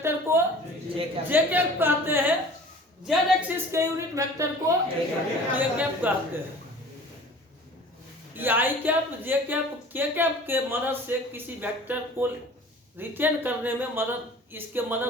को जे कैप कहते हैं, जेड एक्सिस के यूनिट वेक्टर को के कैप कहते हैं। ये आई cap, J cap, K cap के मदद से किसी वेक्टर को रिटेन करने में मदद, इसके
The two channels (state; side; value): normal; both; correlation 0.44